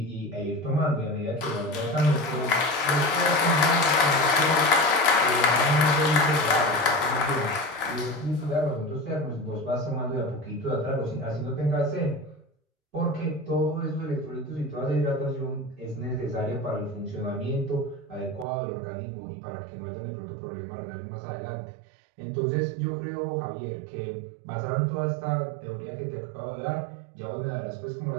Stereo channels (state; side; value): drops out; left; at 18.4 s